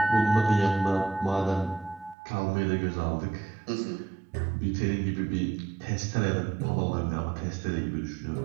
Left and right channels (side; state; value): left; drops out; at 2.1 s